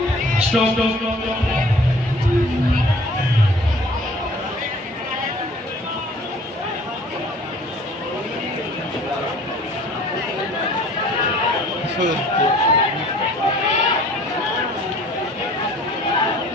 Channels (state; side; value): normal; both; correlation 0.51